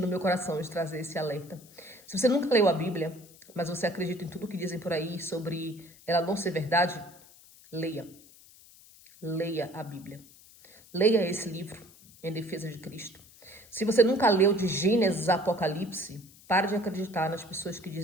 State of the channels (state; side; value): noise; left; hiss, 23 dB below the sound